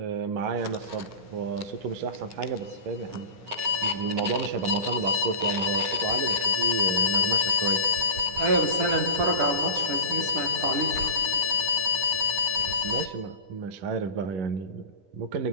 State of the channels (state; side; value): late; left; 10 ms